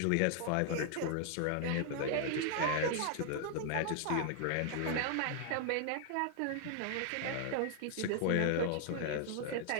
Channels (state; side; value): different; both; correlation 0.00